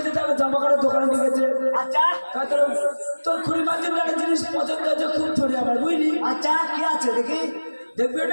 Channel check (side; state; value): both; inverted; correlation -1.00